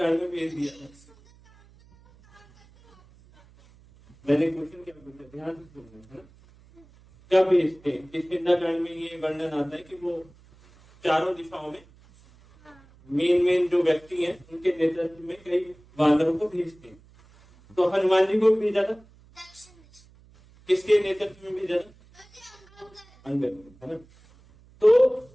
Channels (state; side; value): noise; right; hum, 27 dB below the sound